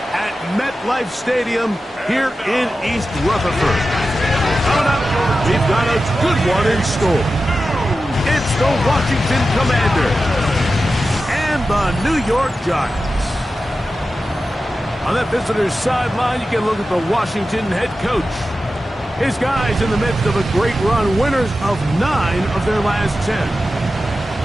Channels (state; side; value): normal; both; correlation 0.93